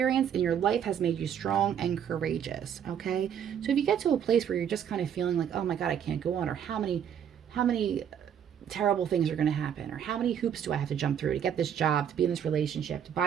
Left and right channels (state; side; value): quieter; left; 8.8 dB